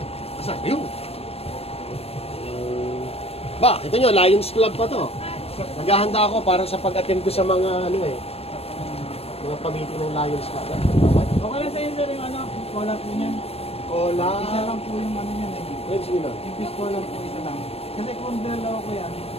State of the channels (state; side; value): late; right; 0.29 ms